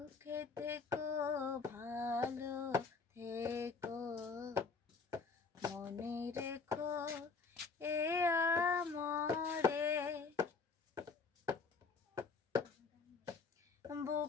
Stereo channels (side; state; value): right; quieter; 4.7 dB